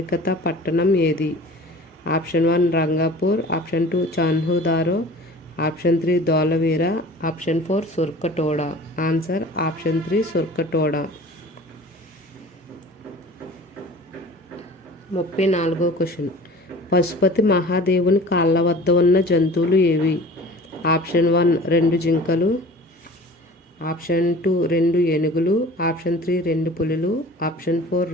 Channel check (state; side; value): normal; both; correlation 0.43